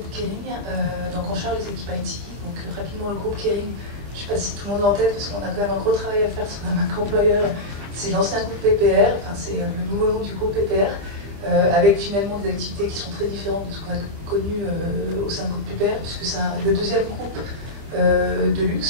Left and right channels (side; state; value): left; late; 25 ms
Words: Kering, donc on charge les équipes IT. Donc rapidement le groupe Kering, je ne sais pas si tout le monde l'a en tête, parce qu'on a quand même un gros travail à faire sur la marque employeur. C'est l'ancien groupe PPR, enfin c'est le nouveau nom du groupe PPR, avec finalement des activités qui sont très différentes de ce qu'on a connu au sein du groupe PPR, puisque c'est le deuxième groupe de